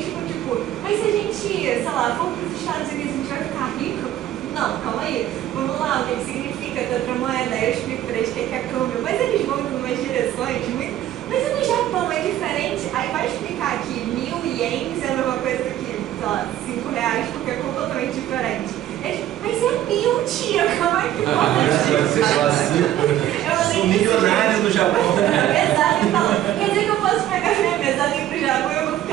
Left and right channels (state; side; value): quieter; left; 12.6 dB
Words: ficam tipo, mas se a gente, sei lá, for pros Estados Unidos, a gente vai ficar rico? Não, calma aí. Vamos lá, o que significa ter outra moeda? Aí eu explico pra eles o que é câmbio. Mas eles vão em umas direções muito. Mas no Japão é diferente, aí vai explicar que 1.000 ienes é a mesma coisa que, sei lá, 5 reais, porque é completamente diferente. Mas é 1.000, tia, como é que pode? Eu sou milionário no Japão. Exato, então, quer dizer que eu posso pegar minha mesa ali pro Japão e eu vou